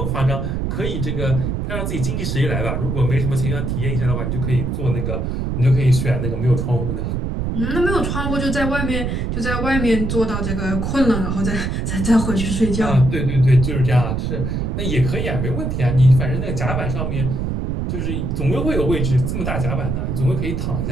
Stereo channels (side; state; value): right; noise; rumble, 1 dB below the sound